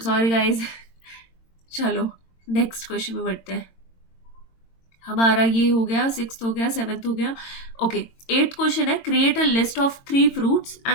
गाइज। चलो नेक्स्ट क्वेश्चन में बढ़ते हैं। हमारा ये हो गया, 6th हो गया, 7th हो गया। ओके, 8th क्वेश्चन है create a list of 3 fruits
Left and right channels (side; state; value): right; late; 22 ms